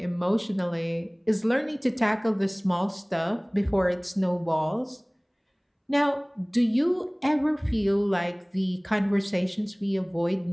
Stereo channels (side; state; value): both; identical; correlation 1.00